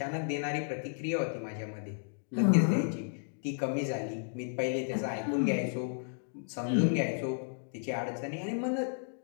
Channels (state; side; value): silent; right; digital silence